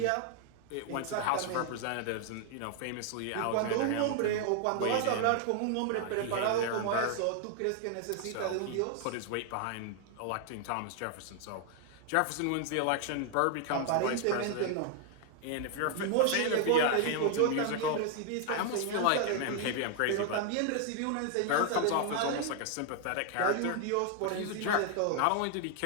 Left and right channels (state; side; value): different; both; correlation 0.00